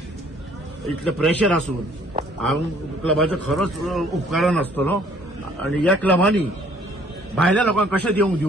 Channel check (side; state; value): both; normal; correlation 0.59